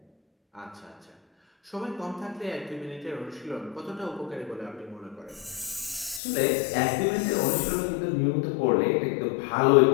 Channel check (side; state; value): right; drops out; at 6.2 s